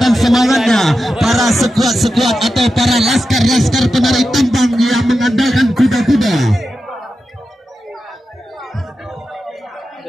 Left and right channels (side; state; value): both; normal; correlation 0.90